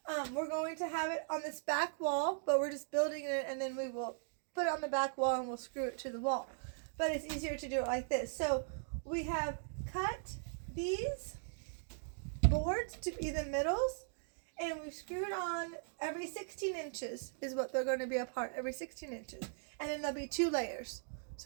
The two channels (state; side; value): silent; left; digital silence